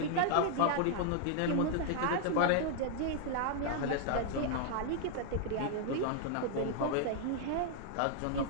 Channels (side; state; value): both; different; correlation 0.00